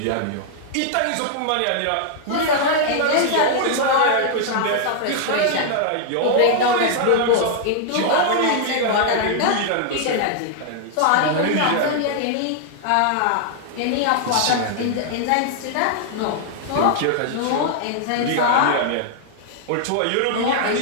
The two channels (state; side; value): different; both; correlation -0.01